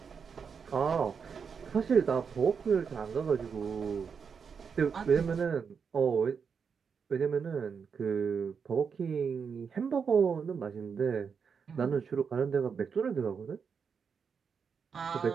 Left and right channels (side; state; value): left; quieter; 6.2 dB